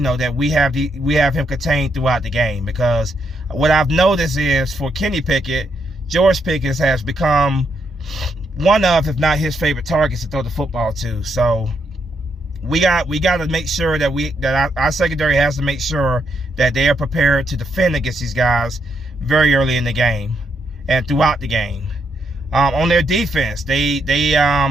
have him contained throughout the game. Because what I've noticed is for Kenny Pickett, George Pickens has become one of, if not his favorite targets to throw the football to. So we got to make sure that our secondary has to make sure that they are prepared to defend against these guys very early in the game and throughout the game. On their defense, this is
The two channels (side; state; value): both; normal; correlation 0.78